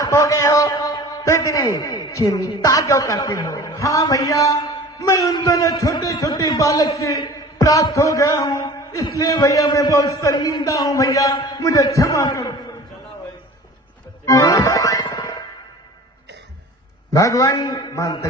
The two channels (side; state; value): both; normal; correlation 0.42